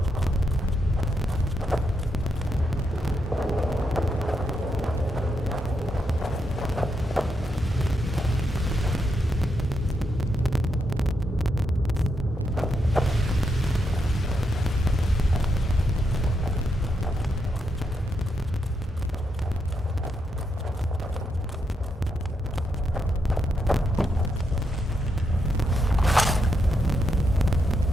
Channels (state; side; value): normal; both; correlation 0.81